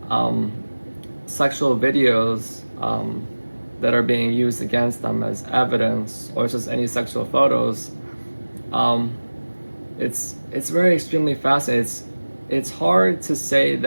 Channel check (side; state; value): both; inverted; correlation -1.00